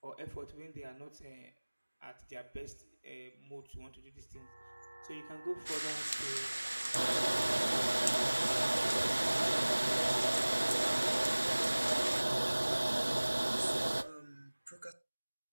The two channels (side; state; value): both; inverted; correlation -1.00